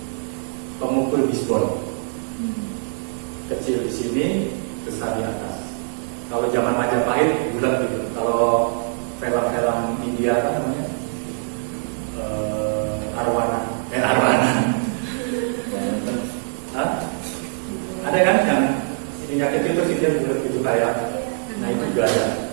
pemukul bisbol. Kecil di sini, besar di atas. Kalau zaman Majapahit bulat gitu. Kalau film-film India apa namanya? Arwana. Hah? Ada kan yang ininya kecil terus dia bulat gitu kayak. Nah itu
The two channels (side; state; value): left; silent; 64 dB below the other